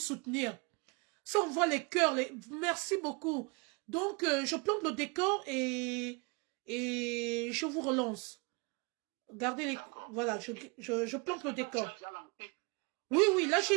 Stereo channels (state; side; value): quieter; left; 29.9 dB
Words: Ça, on voit les cœurs. Merci beaucoup. Donc, je plante le décor et je vous relance. Gardez les... Voilà, je plante le décor. Oui, oui, là,